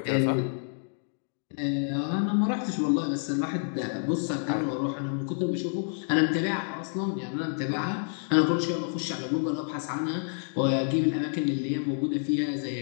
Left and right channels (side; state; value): right; silent; digital silence